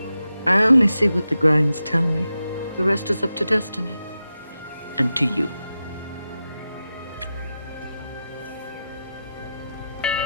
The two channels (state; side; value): inverted; both; correlation -0.90